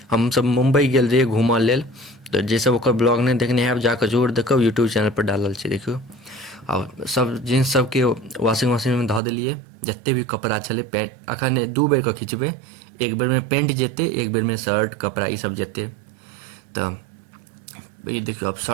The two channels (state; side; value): drops out; left; at 9.2 s